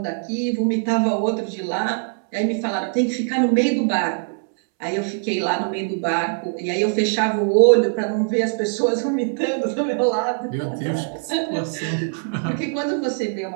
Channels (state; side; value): silent; left; 64 dB below the other